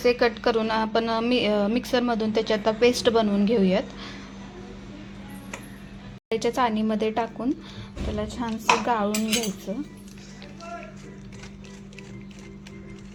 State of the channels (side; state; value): both; identical; correlation 1.00